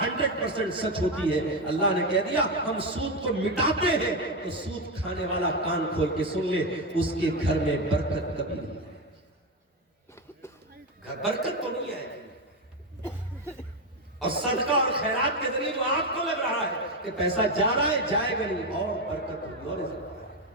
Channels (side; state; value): both; normal; correlation 0.11